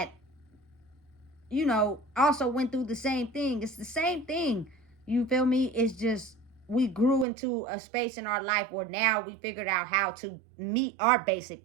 you know, also went through the same thing. It's the same thing. You feel me? It's just we grew into a space in our life where now we figured out how to meet our basic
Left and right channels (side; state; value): left; drops out; at 7.2 s